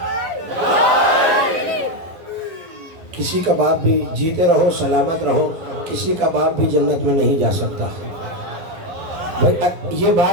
کسی کا باپ بھی جیتے رہو سلامت رہو کسی کا باپ بھی جنت میں نہیں جا سکتا. بھائی یہ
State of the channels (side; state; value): left; late; 11 ms